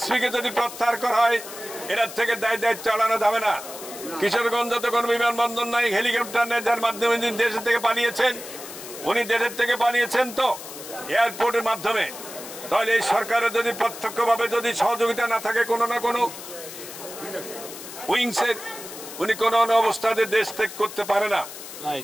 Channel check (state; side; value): noise; left; hiss, 12 dB below the sound